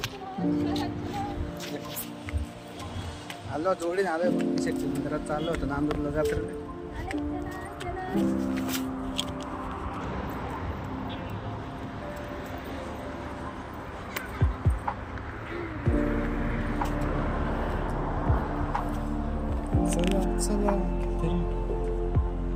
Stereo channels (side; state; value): both; identical; correlation 1.00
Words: आलो जोडीने आलोय भक्ती शक्ती मंदिरात चाललो होतो नांदूरला जत्रेला. चला